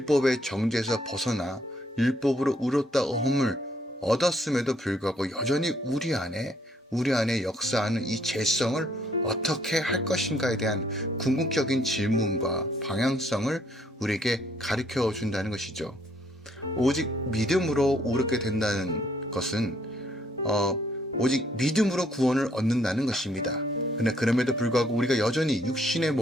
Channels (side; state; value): both; normal; correlation 0.67